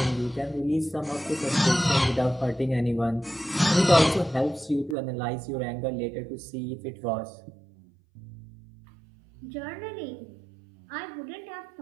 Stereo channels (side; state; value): left; drops out; at 5.0 s